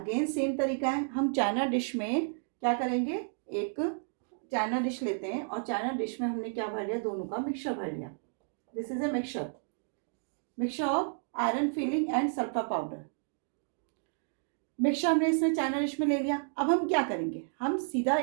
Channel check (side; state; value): left; silent; digital silence